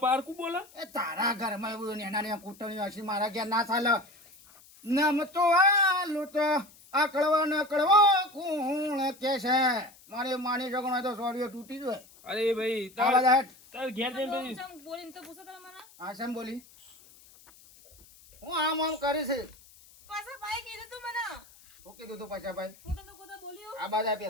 પારકું બોલે. એ તારા ઘરમાં એવું નેના કૂટણી હશે મારા ઘેર ના ચાલે. નમ તો આલુ તો આ કળવા ન કળવો કોણ કે છે? મારી માની છોકરો તો સોડિયો તૂટી જાય. અરે ભાઈ આવા તાર જાટ. તાર ઘેર જઈને પછી ચમ બોલીને તો પૂછો તમે મને આ શેમ બોલી? હું આમ કરી છે. પાછા ભાઈ કીધું તું મને હું કીધું તું પાછાભાઈ? હું તમને કોતા બોલ્યો આ બાજુ આ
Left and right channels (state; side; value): noise; left; hiss, 24 dB below the sound